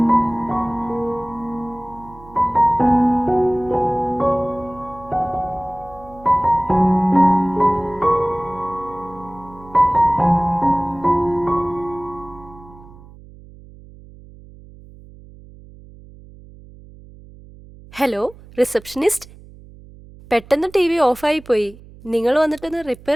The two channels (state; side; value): noise; right; hum, 21 dB below the sound